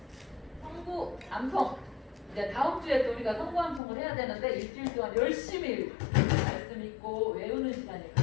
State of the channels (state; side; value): drops out; right; at 3.8 s